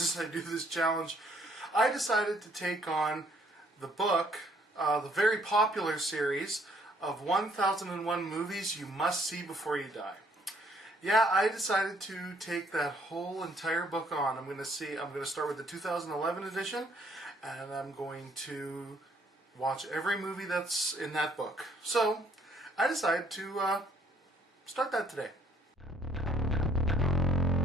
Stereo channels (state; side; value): normal; both; correlation 0.65